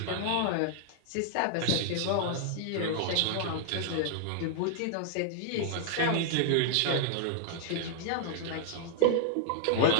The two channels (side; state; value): both; different; correlation -0.01